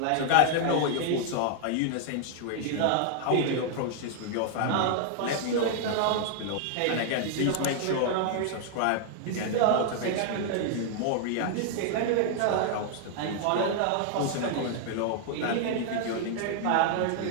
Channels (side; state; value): both; different; correlation 0.00